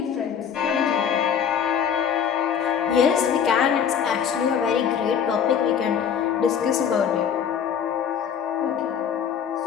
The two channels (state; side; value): quieter; right; 7.9 dB